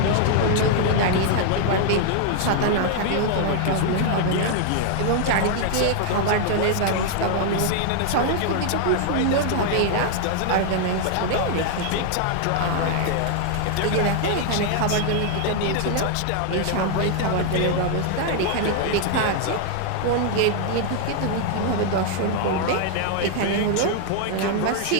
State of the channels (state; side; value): different; both; correlation 0.00